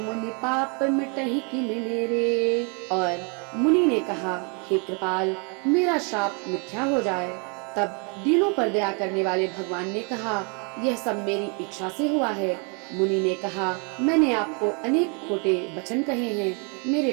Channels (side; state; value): left; quieter; 36.0 dB